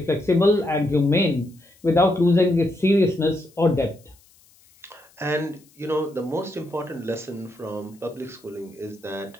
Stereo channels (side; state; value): left; noise; hiss, 30 dB below the sound